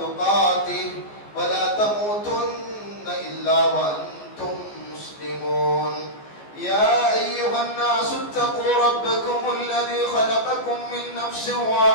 ولا تموتن إلا وأنتم مسلمون يا أيها الناس اتقوا ربكم الذي خلقكم من نفس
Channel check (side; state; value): right; late; 14 ms